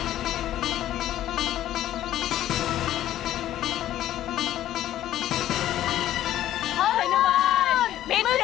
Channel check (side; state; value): right; quieter; 12.8 dB